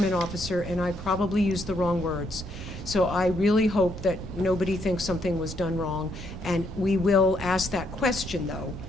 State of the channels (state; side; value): normal; both; correlation 0.74